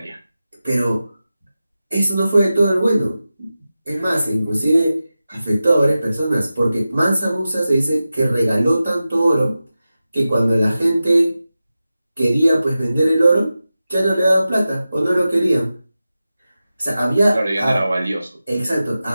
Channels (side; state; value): both; inverted; correlation -0.94